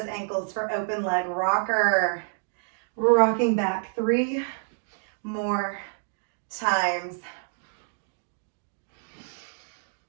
ankles for open leg rocker. Rocking back 3 more times.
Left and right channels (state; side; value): silent; left; digital silence